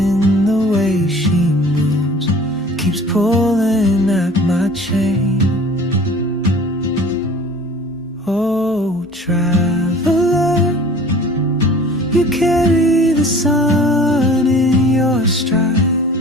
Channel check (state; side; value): normal; both; correlation 0.46